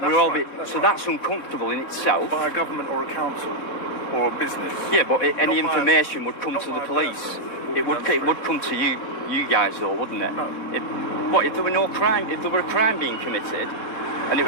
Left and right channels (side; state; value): right; late; 4.1 ms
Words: So that's uncomfortable in itself. By a government or a council or a business. Yeah, but any Not by- information would come not to the by a police. person. It would come to you guys though, wouldn't it? No. If there were no crime, if there were a crime being committed, and it